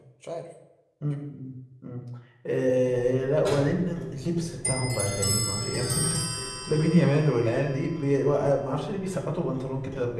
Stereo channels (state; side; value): identical; both; correlation 1.00